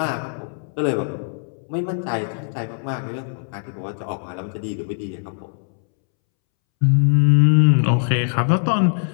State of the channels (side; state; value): right; silent; 65 dB below the other